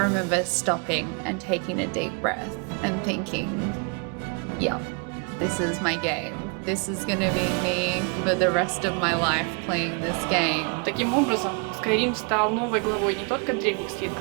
remember stopping and taking a deep breath and thinking, yeah, this is my game. This is gonna be me for the rest of my life playing this game. Таким образом, Skyrim стал новой главой не только древних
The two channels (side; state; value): left; quieter; 34.4 dB